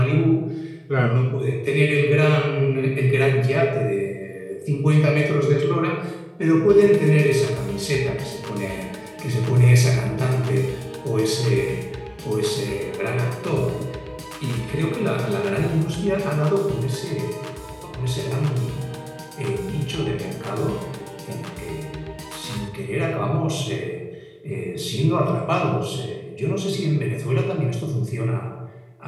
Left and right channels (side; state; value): both; identical; correlation 1.00